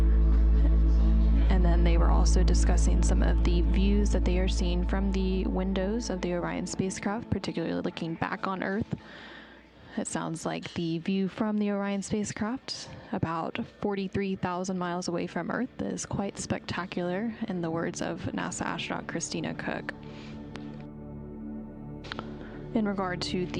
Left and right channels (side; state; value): both; identical; correlation 1.00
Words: And then they were also discussing some of the views that they are seeing from the windows of the Orion spacecraft, particularly looking back on Earth. It sounds like the view from the Orion spacecraft, about 43,000 miles away from Earth, is quite spectacular, in the words of NASA astronaut Christina Cook. In regard to